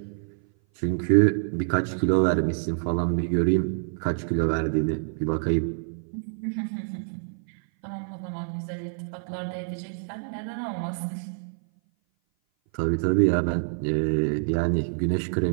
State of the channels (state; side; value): silent; left; 57 dB below the other